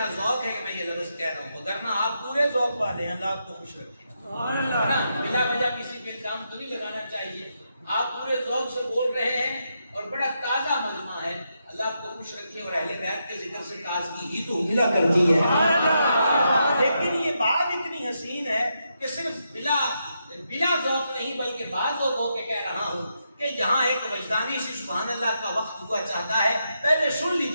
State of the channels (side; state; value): both; inverted; correlation -0.82